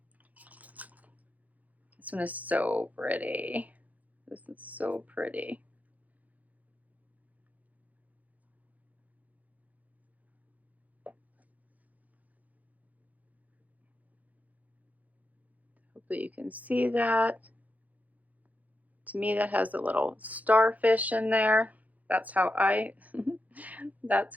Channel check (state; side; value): late; left; 0.077 ms